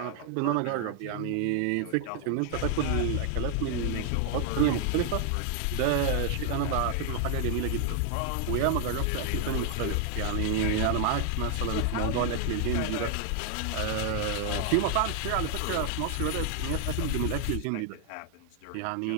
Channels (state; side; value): different; both; correlation 0.00